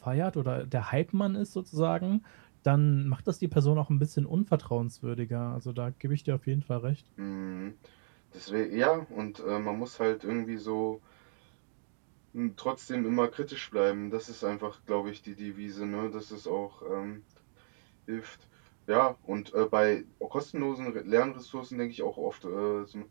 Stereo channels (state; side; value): silent; left; digital silence